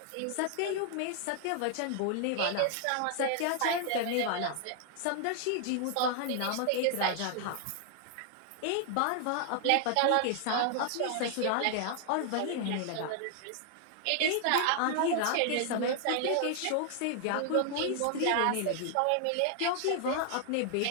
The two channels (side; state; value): both; different; correlation 0.00